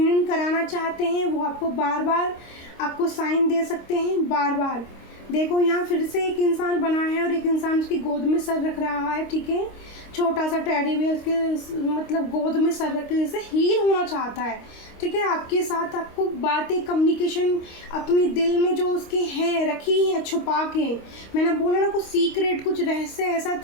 कराना चाहते हैं, वो आपको बार बार आपको साइन दे सकते हैं, बार बार। देखो यहाँ फिर से एक इंसान बना है और एक इंसान उसकी गोद में सर रख रहा है, ठीक है। छोटा सा टेडी बियर उसके मतलब गोद में सर रख के जैसे हील होना चाहता है, ठीक है। आपके साथ आपको बातें, कम्युनिकेशन अपने दिल में जो उसके हैं रखी हैं छुपा के, मैंने बोला ना कुछ सीक्रेट, कुछ रहस्य ऐसा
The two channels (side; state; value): right; late; 25 ms